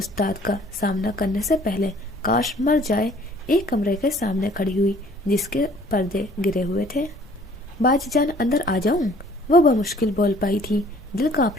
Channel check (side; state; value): both; normal; correlation 0.55